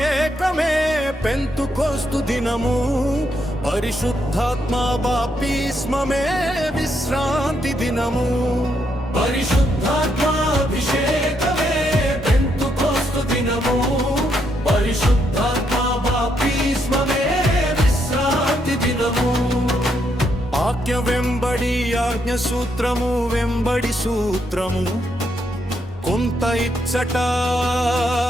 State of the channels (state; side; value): normal; both; correlation 0.77